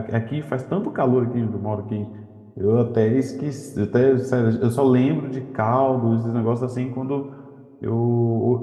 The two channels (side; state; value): both; identical; correlation 1.00